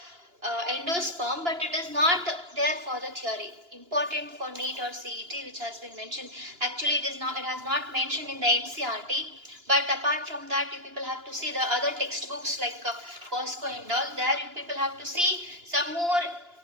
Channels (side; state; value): left; late; 2.9 ms